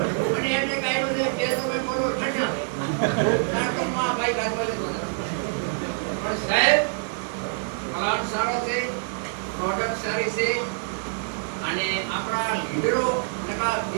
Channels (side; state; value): left; silent; 58 dB below the other